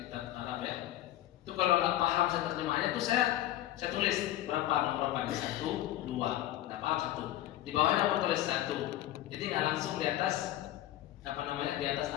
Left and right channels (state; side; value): quieter; right; 14.0 dB